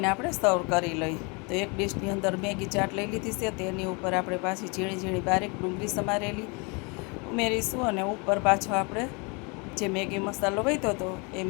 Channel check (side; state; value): right; quieter; 31.1 dB